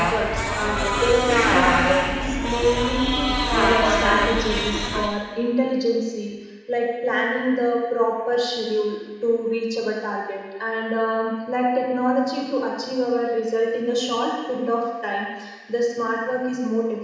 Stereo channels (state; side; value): identical; both; correlation 1.00